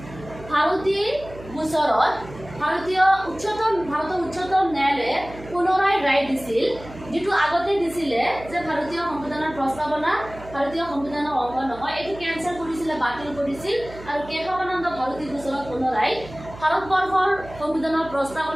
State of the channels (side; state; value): right; noise; hum, 16 dB below the sound